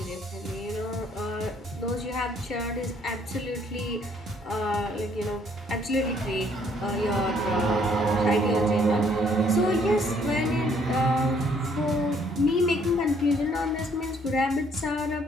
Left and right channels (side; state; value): both; normal; correlation 0.64